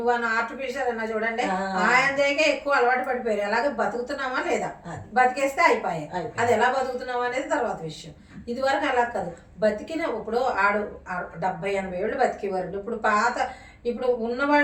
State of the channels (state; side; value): identical; both; correlation 1.00